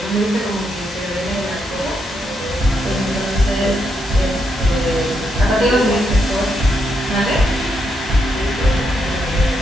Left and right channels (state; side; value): normal; both; correlation 0.80